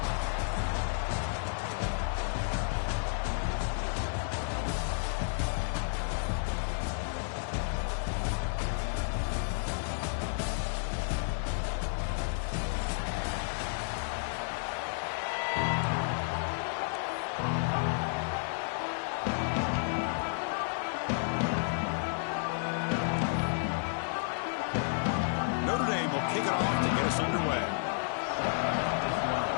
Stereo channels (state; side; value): silent; right; digital silence